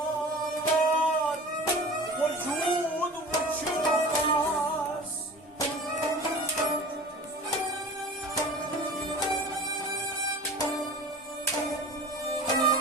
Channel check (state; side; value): normal; both; correlation 0.38